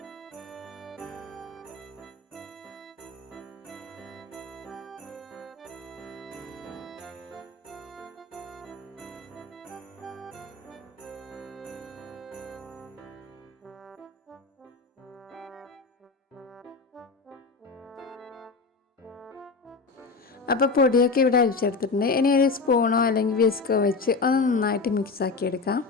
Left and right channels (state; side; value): quieter; right; 4.3 dB